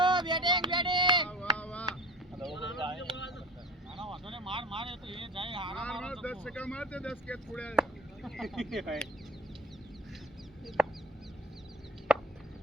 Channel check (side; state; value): both; normal; correlation 0.38